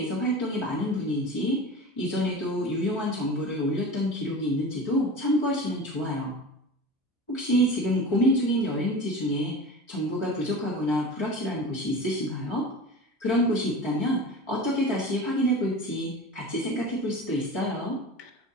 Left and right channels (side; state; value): both; normal; correlation 0.33